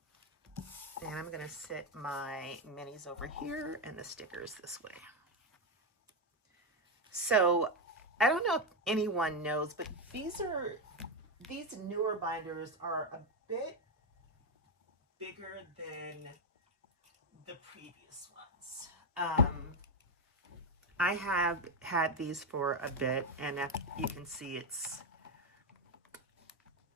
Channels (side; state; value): both; normal; correlation 0.07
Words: And I'm gonna set my minis over here and the stickers this way. So I don't know if anyone knows, but these newer binders are a bit bigger than the previous ones. I have had these for a bit, and if you can see, it's